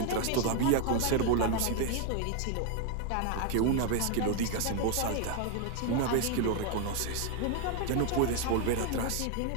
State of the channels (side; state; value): both; different; correlation 0.01